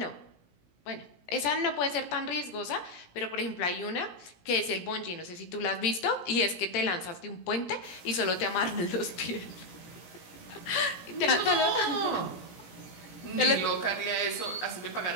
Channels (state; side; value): late; right; 17 ms